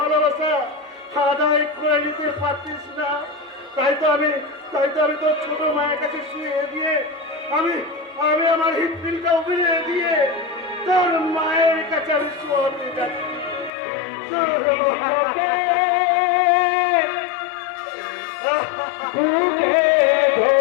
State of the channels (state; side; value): drops out; right; at 13.7 s